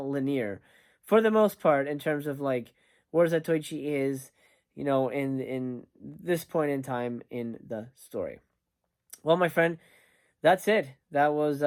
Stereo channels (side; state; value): both; identical; correlation 1.00